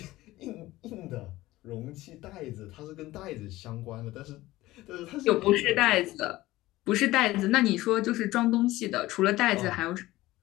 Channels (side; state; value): right; quieter; 17.5 dB